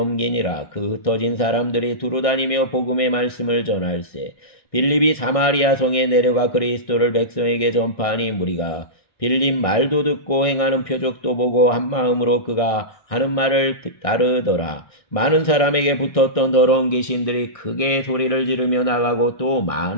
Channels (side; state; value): right; late; 1.6 ms